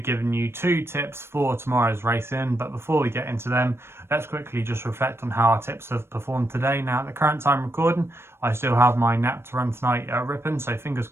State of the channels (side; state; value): left; late; 0.12 ms